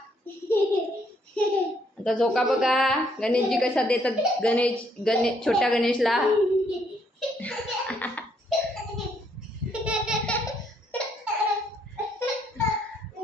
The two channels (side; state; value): both; normal; correlation 0.70